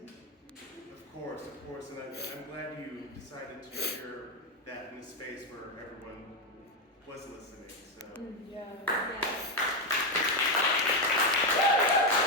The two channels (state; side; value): normal; both; correlation 0.07